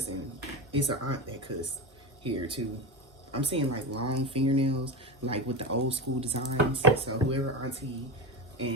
It's an aunt that cuss here too. I'm seeing like long fingernails, like with the old school designs. So whoever auntie,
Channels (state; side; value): normal; both; correlation 0.19